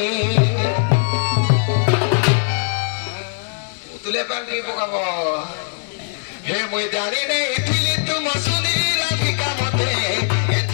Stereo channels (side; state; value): right; silent; digital silence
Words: তুলে পাল্টি পকাব হে মুই জানি নেই থিলি তুম শুনি রাধিকা মতে